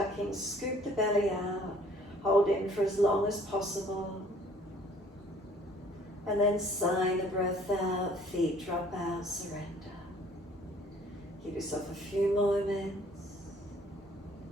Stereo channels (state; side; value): normal; both; correlation 0.56